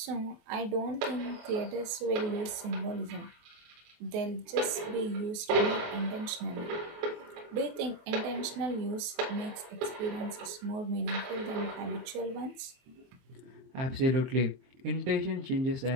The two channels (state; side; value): late; left; 23 ms